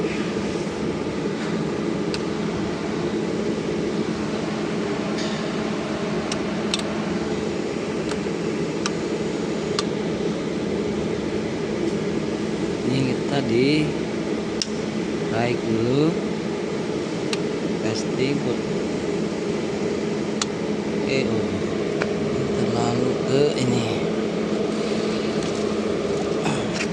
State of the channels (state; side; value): identical; both; correlation 1.00